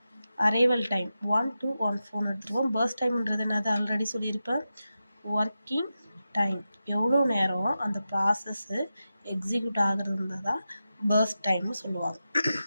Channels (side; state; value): both; inverted; correlation -0.91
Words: Arrival time 1 to 1 எடுத்துருவோம். பர்ஸ்ட் டைம்ன்றது என்னது? ஆல்ரெடி சொல்லியிருப்பேன். ஒர்க்கிங் டைம், எவ்வளோ நேரம் அந்த ப்ராசஸ்ஸு எக்ஸிக்யூட் ஆகுறது தான் பர்ஸ்ட் டைம்னு சொல்லுவாங்க.